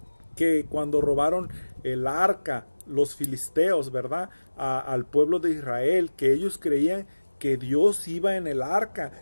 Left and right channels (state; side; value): inverted; both; correlation -1.00